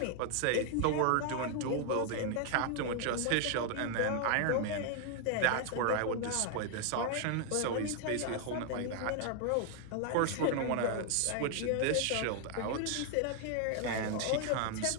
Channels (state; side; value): different; both; correlation 0.00